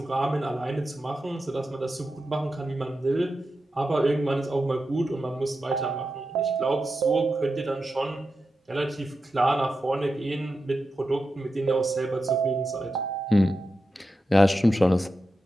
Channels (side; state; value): both; normal; correlation 0.90